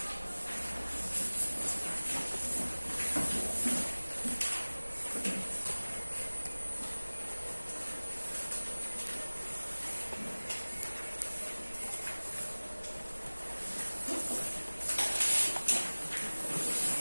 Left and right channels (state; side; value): inverted; both; correlation -1.00